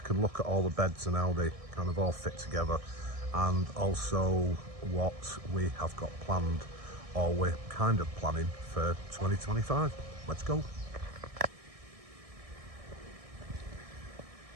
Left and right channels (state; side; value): late; left; 1.6 ms